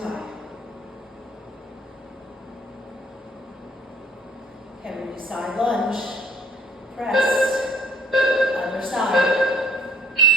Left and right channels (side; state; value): both; normal; correlation 0.59